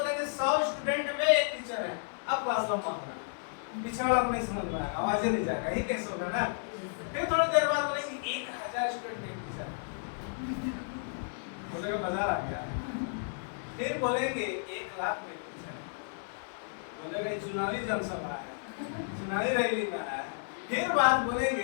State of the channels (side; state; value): right; silent; digital silence